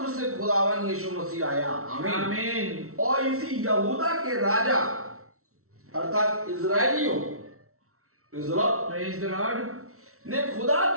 से खुदावन यीशु मसीह आया। आमीन। और इसी यहूदा के राजा अर्थात इजराइलियों प्रेज द लॉर्ड ने खुदा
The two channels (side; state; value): left; late; 0.63 ms